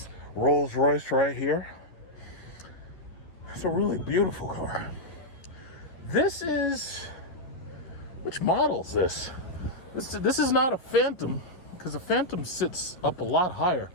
Rolls Royce right here. It's a really beautiful car. This is, which model is this? This is not a Phantom, because a Phantom sits up a lot higher.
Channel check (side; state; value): right; late; 11 ms